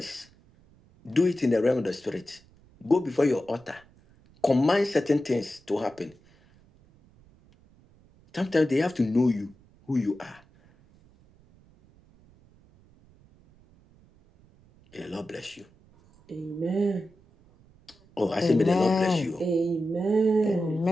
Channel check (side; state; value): right; noise; rumble, 29 dB below the sound